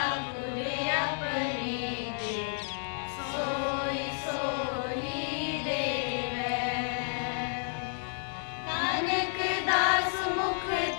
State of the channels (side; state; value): right; silent; 57 dB below the other